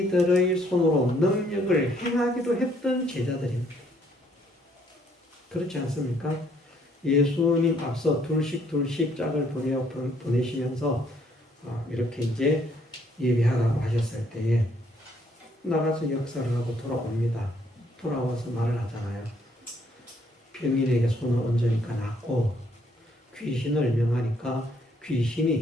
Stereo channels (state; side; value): normal; both; correlation 0.67